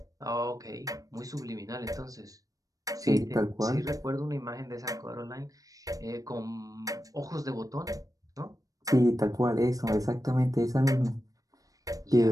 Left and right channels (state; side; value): late; left; 0.17 ms